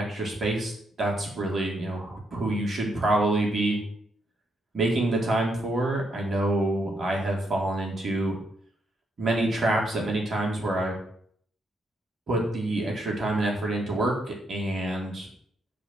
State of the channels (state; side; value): normal; both; correlation 0.77